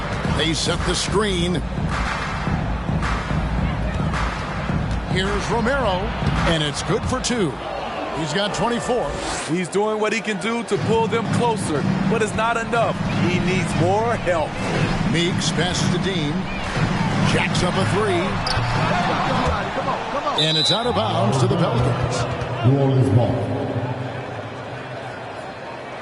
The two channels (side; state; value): both; identical; correlation 1.00